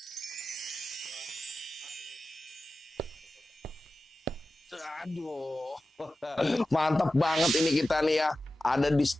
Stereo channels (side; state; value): both; normal; correlation 0.94